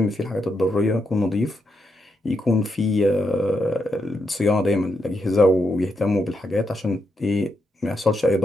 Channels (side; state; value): both; normal; correlation 0.82